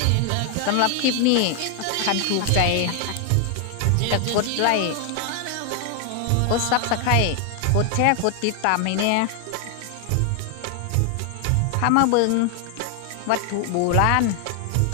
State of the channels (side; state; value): both; different; correlation 0.00